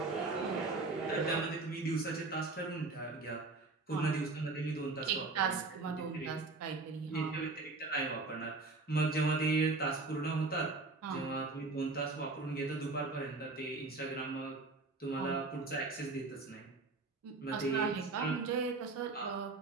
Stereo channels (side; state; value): left; quieter; 3.6 dB